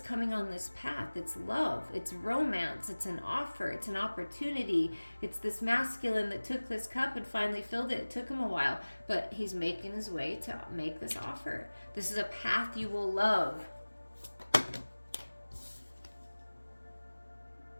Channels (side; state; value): both; inverted; correlation -1.00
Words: coming on this path. It's love, it's romance, it's an offer, it's an opportunity. It's this masculine that took this cup and finally filled it. It took him a while, but he's making his way to make this offer. This is a path you will love.